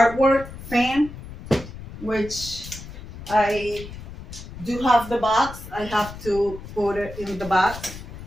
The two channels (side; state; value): left; noise; rumble, 13 dB below the sound